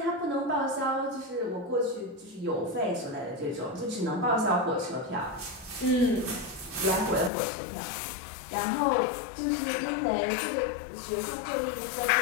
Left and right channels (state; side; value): drops out; right; at 7.3 s